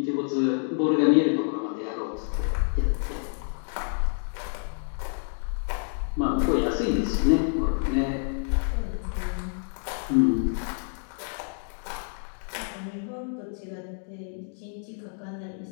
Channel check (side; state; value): right; silent; 59 dB below the other